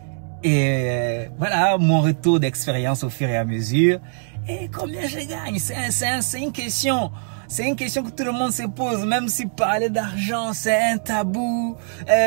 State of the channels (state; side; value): silent; left; digital silence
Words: Et voilà mon retour d'expérience au fur et à mesure. Et combien je gagne? C'est une question. C'est une question que tout le monde se pose. Même si parler d'argent, c'est un tabou.